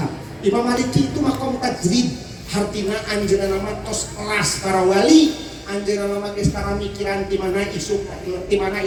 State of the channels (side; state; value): both; identical; correlation 1.00